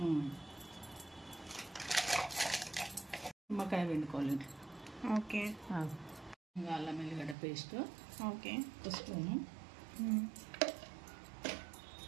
నిమ్మకాయ పిండుకోవాలి. ఓకే, అల్లం ఎల్లిగడ్డ పేస్ట్, ఓకే, 1 స్పూను.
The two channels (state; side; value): drops out; left; at 7.4 s